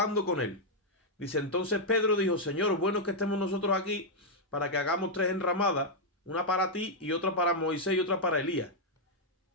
con él. Dice, entonces Pedro dijo, Señor, bueno es que estemos nosotros aquí para que hagamos 3 enramadas. Una para ti y otra para Moisés y otra para Elías.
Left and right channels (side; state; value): both; normal; correlation -0.03